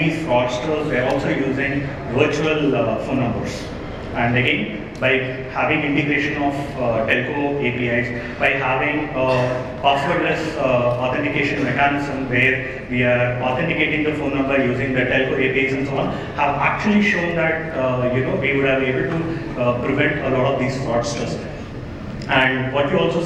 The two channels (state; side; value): identical; both; correlation 1.00